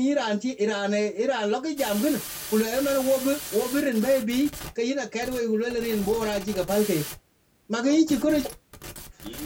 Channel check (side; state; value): both; identical; correlation 1.00